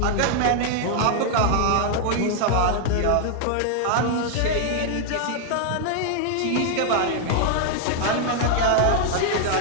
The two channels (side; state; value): both; different; correlation 0.00